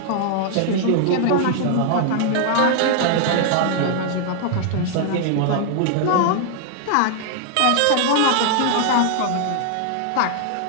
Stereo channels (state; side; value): different; both; correlation 0.00